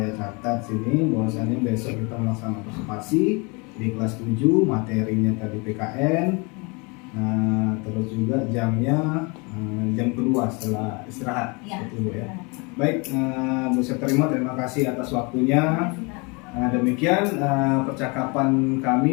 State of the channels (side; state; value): right; quieter; 29.8 dB